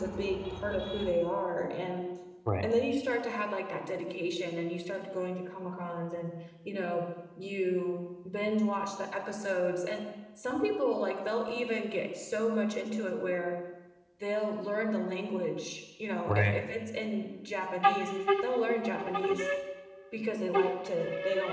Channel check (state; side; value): identical; both; correlation 1.00